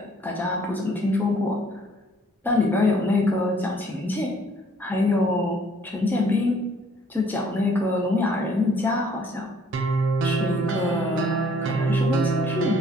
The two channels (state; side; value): normal; both; correlation 0.60